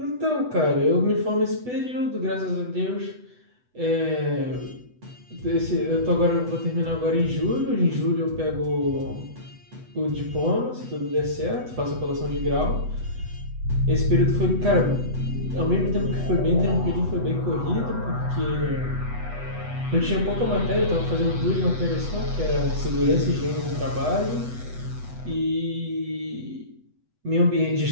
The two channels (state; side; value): late; left; 8.1 ms